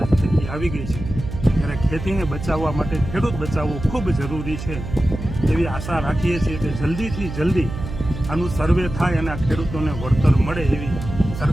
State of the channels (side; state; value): right; noise; hum, 8 dB below the sound